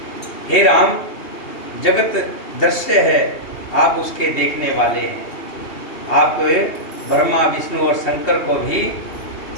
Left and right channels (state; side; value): late; right; 2.8 ms